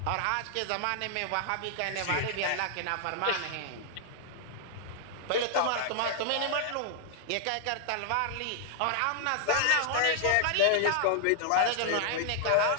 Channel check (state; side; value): different; both; correlation -0.01